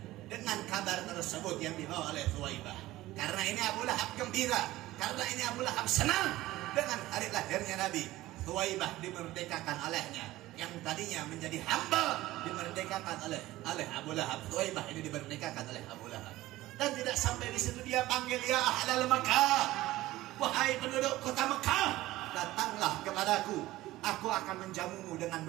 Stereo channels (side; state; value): left; quieter; 16.9 dB